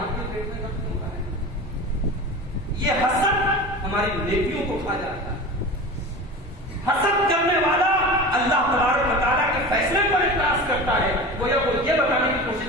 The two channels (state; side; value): normal; both; correlation 0.32